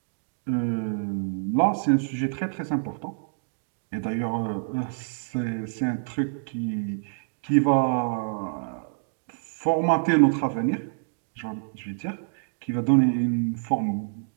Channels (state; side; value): silent; left; digital silence